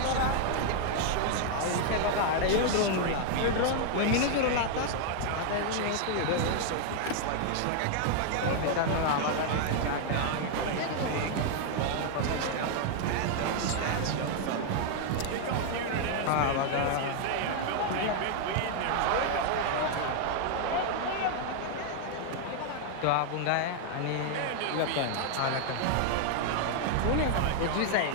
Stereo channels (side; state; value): both; different; correlation 0.00